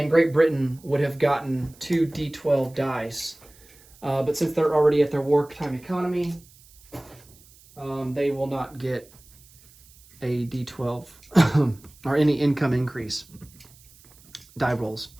Great Britain would have gotten 2 D12 dice. But since they're already at their wartime economy, they will not get a D12 or any income increase die rolls.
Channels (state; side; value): noise; right; hiss, 26 dB below the sound